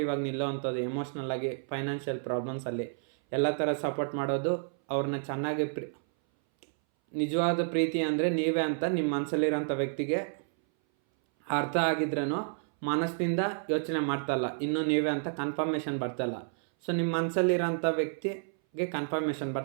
ಆಗಿ ನಿಲ್ಲೋವಂಥದ್ದು, ಎಮೋಷ್ನಲ್ ಆಗಿ, ಫೈನಾನ್ಷಿಯಲ್ ಪ್ರಾಬ್ಲಮ್ಸಲ್ಲಿ ಎಲ್ಲ ಥರ ಸಪೋರ್ಟ್ ಮಾಡೋದು, ಅವ್ರನ್ನ ಚೆನ್ನಾಗಿ ನಿಜವಾದ ಪ್ರೀತಿ ಅಂದರೆ ನೀವೇ ಅಂತ ನಿಮ್ಮ ಮನಸ್ಸಲ್ಲಿರೋಂಥ ವ್ಯಕ್ತಿಗೆ ಅರ್ಥ ಆಗಿದ್ರೂ ಮನಸ್ಸಿನಿಂದ ಯೋಚನೆ ಮಾಡ್ತಲ್ಲ, ಇನ್ನೂ ನೀವೇ ಅಂತ ಕನ್ಫರ್ಮೇಷನ್ ಬರ್ತಲ್ಲ. ಸೊ ನಿಮ್ಮ ಮನಸ್ಸಲ್ಲಿರೋಂಥ ವ್ಯಕ್ತಿಗೆ ಕನ್ಫರ್ಮೇಷನ್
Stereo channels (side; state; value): left; silent; 58 dB below the other